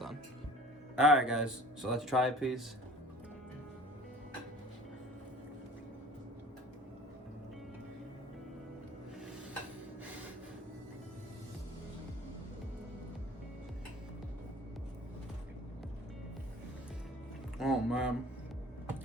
on. Alright guys, so let's try a piece. Oh man.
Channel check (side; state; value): both; normal; correlation 0.46